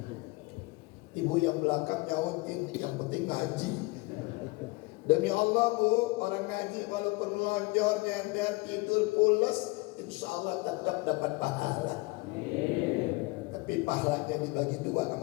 Ibu yang belakang nyautin, yang penting ngaji. Demi Allah bu, orang ngaji walaupun melonjor, nyender, tidur pulas, insya Allah tetap dapat pahala. Tapi pahalanya dibagi dua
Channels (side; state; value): right; quieter; 24.7 dB